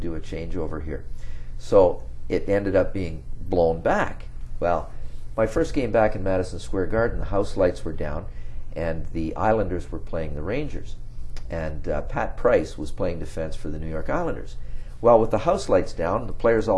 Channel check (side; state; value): both; identical; correlation 1.00